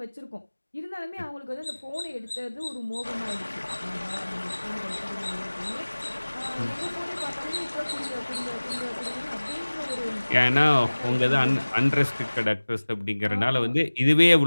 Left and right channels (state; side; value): inverted; both; correlation -1.00